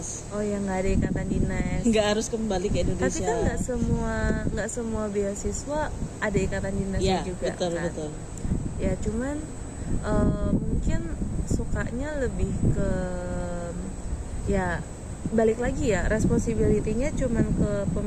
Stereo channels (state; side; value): identical; both; correlation 1.00